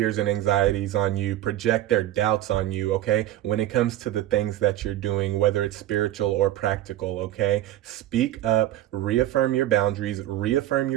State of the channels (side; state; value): left; quieter; 13.6 dB